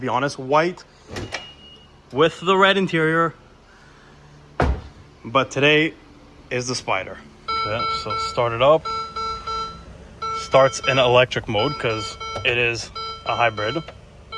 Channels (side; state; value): both; identical; correlation 1.00